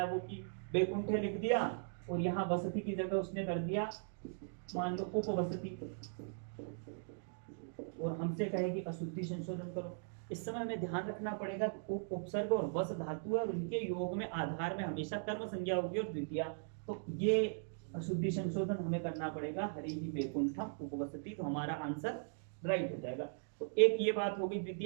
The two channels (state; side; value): silent; left; digital silence